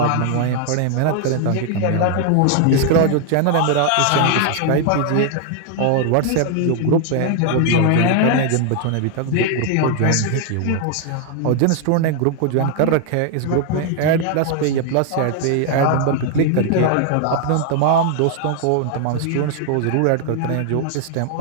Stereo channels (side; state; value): both; different; correlation 0.00